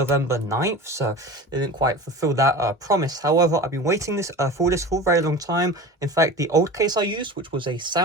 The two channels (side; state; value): both; normal; correlation 0.34